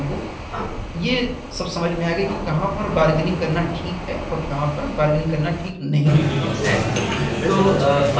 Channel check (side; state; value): both; identical; correlation 1.00